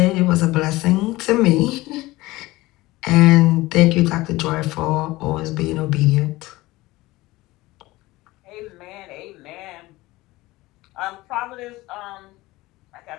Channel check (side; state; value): right; quieter; 19.4 dB